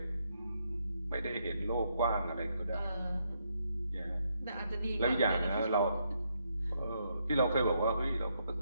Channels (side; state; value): both; inverted; correlation -0.77